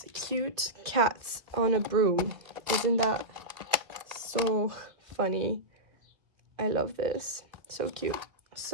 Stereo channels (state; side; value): late; left; 2.0 ms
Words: cute cats on a broom. Isn't that so funny? I love this. So cute.